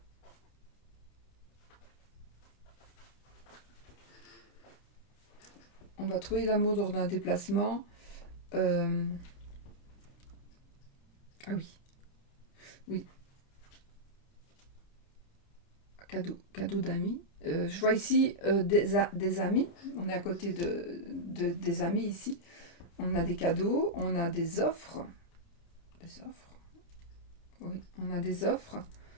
On va trouver l'amour lors d'un déplacement. Ah oui. Oui. cadeau d'amis. Je vois ici des amis. On est à côté des amis ici. On a des cadeaux, on a des offres. Des offres. Oui, on a des offres.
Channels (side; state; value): right; late; 29 ms